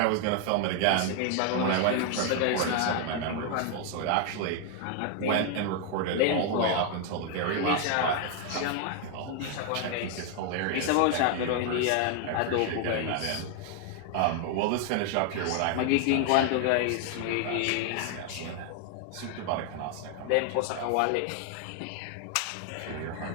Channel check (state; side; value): different; both; correlation 0.00